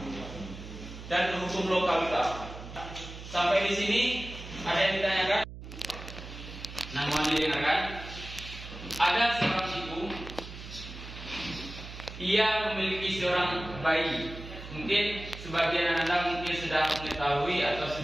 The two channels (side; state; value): right; noise; hum, 12 dB below the sound